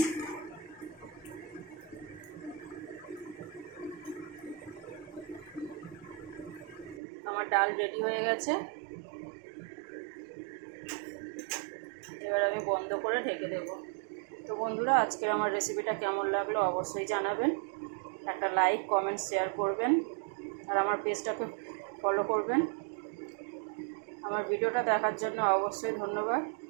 আমার ডাল রেডি হয়ে গেছে, এবার আমি বন্ধ করে ঢেকে দেব। তো বন্ধুরা, আজকের আমার রেসিপিটা কেমন লাগলো অবশ্যই জানাবেন, একটা লাইক কমেন্ট শেয়ার করবেন। আর আমার পেজটাকে ফলো করবেন। আমার ভিডিওটা দেখার জন্য অবশ্যই ধন্যবাদ।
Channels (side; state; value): left; drops out; at 7.0 s